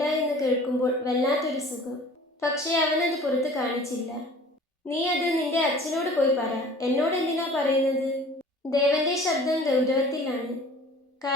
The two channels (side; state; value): both; normal; correlation 0.46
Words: എന്ന് കേൾക്കുമ്പോൾ വല്ലാത്തൊരു സുഖം. പക്ഷേ അവനത് പുറത്ത് കാണിച്ചില്ല. നീ അത് നിന്റെ അച്ഛനോട് പോയി പറ. എന്നോട് എന്തിനാ പറയുന്നത്? ദേവന്റെ ശബ്ദം ഗൗരവത്തിലാണ്.